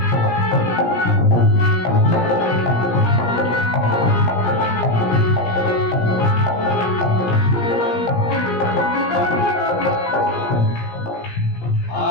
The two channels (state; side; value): late; right; 17 ms